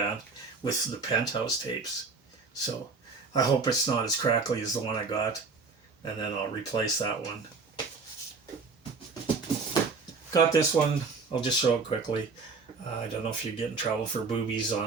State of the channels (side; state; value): left; quieter; 4.5 dB